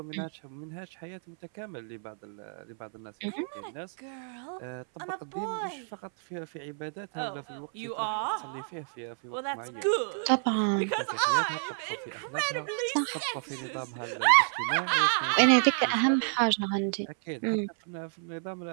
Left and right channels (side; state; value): left; silent; 58 dB below the other